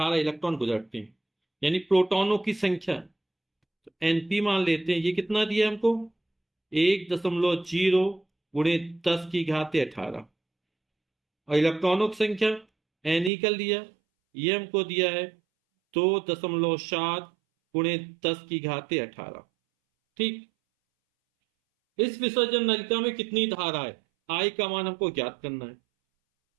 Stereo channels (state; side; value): drops out; left; at 13.3 s